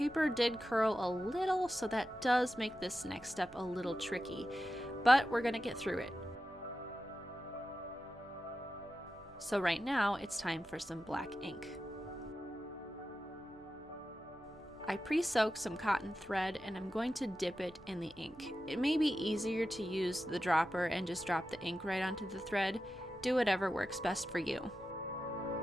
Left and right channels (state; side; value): noise; right; hum, 27 dB below the sound